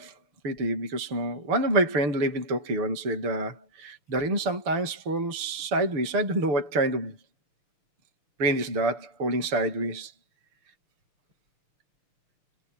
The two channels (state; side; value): late; left; 6.8 ms